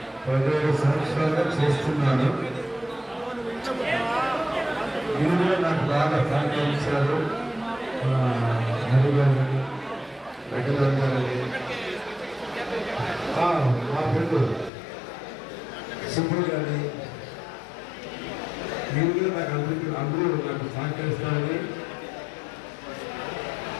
17 సంవత్సరాలుగా చేస్తున్నాను. మీరు కూడా నాకు బాగా సహకరించారు. హరి గారిని, వెంకటరావు గారిని, మా ఫ్రెండ్ సుబ్బు గారిని, మీరు కూడా నాకు అందరూ నాకు సహకరిస్తారని,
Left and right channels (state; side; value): drops out; right; at 14.7 s